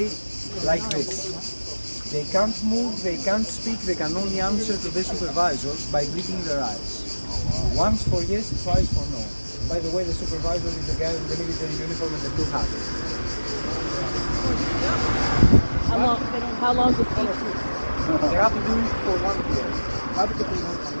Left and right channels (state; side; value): inverted; both; correlation -1.00